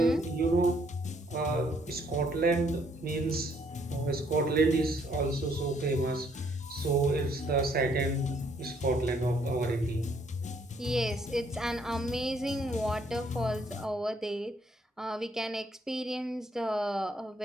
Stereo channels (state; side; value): normal; both; correlation 0.67